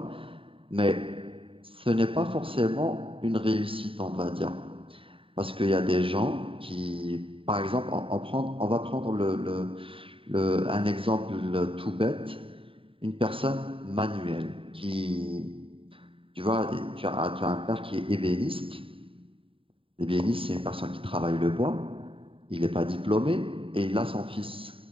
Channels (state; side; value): late; left; 0.26 ms